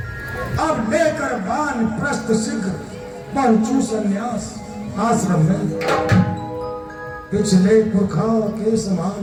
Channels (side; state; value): both; identical; correlation 1.00